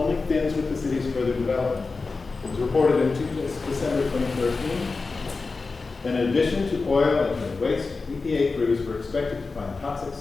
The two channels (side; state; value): right; quieter; 4.1 dB